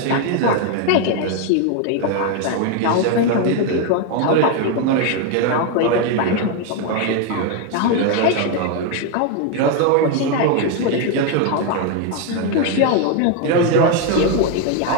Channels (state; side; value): different; both; correlation 0.01